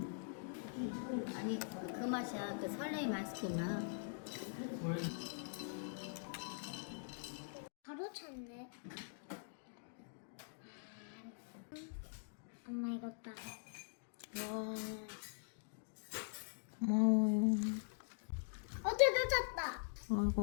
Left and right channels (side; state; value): right; silent; digital silence